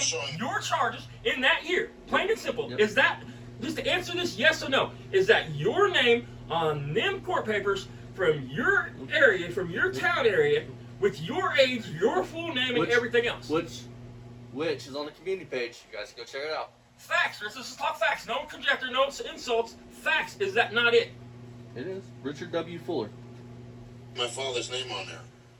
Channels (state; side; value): identical; both; correlation 1.00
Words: name, showing- your charges in that year. Plain and simple. Yep. Is that, just to answer this yes or no, is that your name on them court papers from your area, from your town area, with your age, your full name, and Which- everything else? Which is on the community page. You guys can go check it out. Facts. Let's just talk facts. No conjecture, no insults. Facts. Is that not it? It is Richard W. Fuller. my father's name on there.